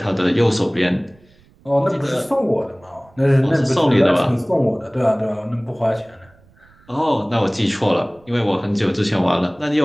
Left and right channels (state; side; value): noise; right; rumble, 30 dB below the sound